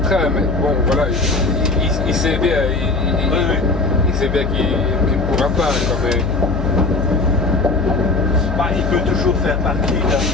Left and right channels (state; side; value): noise; left; hum, 3 dB below the sound